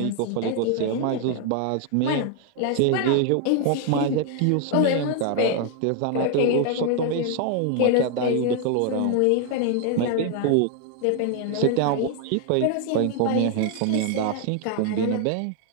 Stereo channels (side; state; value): both; different; correlation 0.00